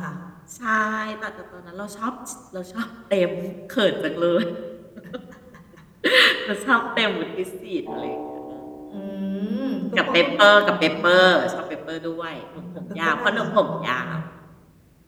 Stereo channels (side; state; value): both; identical; correlation 1.00